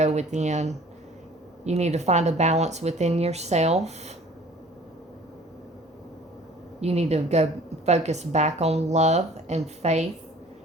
within. You need to find a balance within yourself. You need to go focus back on love and faith.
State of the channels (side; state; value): both; normal; correlation 0.50